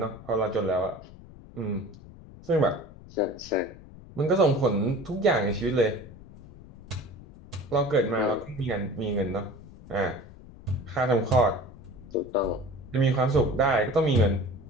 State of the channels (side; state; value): left; noise; rumble, 19 dB below the sound